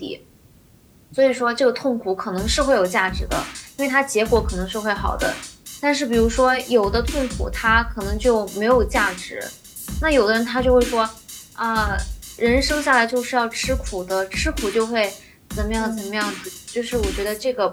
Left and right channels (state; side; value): identical; both; correlation 1.00